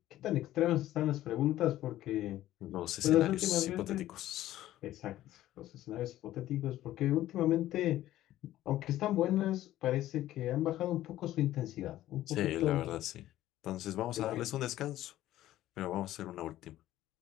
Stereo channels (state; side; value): quieter; right; 14.1 dB